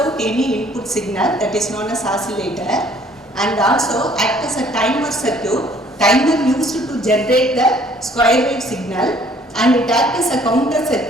any input signal, that is known as oscillator, and also act as a timer circuit. Timer used to generate the square wave signal, and it acts as a counter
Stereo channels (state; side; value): normal; both; correlation 0.59